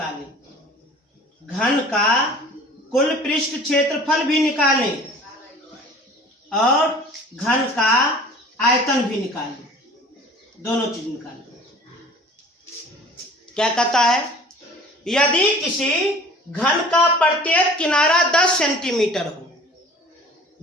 घन का कुल पृष्ठ क्षेत्रफल भी निकालें और घन का आयतन भी निकालें, दोनों चीज निकालें। क्या कहता है? यदि किसी घन का प्रत्येक किनारा 10 सेंटीमीटर हो,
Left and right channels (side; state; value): both; normal; correlation 0.46